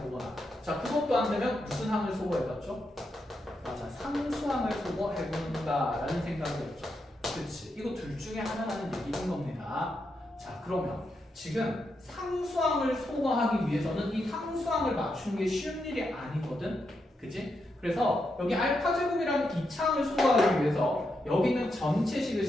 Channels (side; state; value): both; normal; correlation 0.84